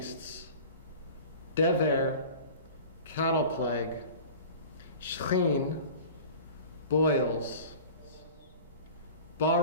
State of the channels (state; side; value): inverted; both; correlation -0.40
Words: Dever, cattle plague, Shchin, boils,